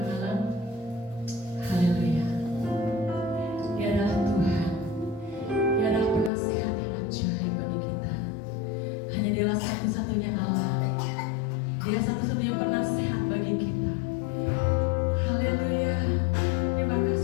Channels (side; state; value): right; drops out; at 6.3 s